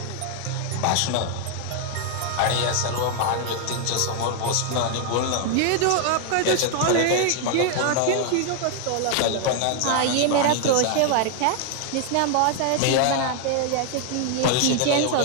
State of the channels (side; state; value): both; different; correlation 0.00